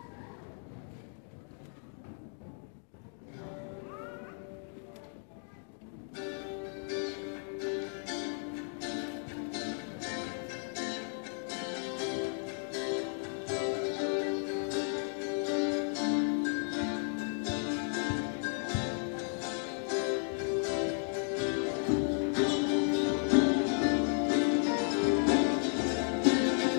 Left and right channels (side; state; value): right; silent; 55 dB below the other